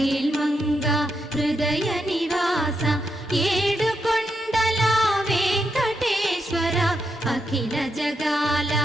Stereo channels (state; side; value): normal; both; correlation 0.82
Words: హృదయ నివాస ఏడుకొండల వెంకటేశ్వర అఖిల జగాల